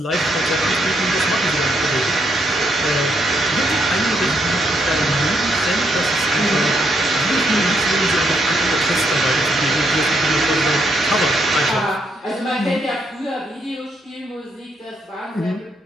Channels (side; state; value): both; normal; correlation 0.75